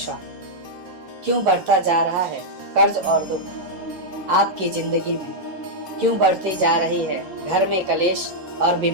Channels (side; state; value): left; late; 11 ms